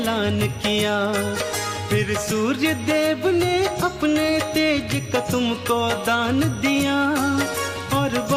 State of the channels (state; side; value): identical; both; correlation 1.00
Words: किया। फिर सूर्य देव ने अपने तेज का तुमको दान दिया, और